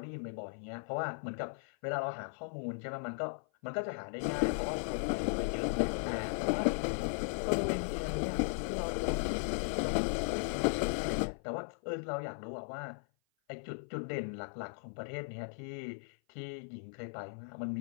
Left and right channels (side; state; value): right; silent; 53 dB below the other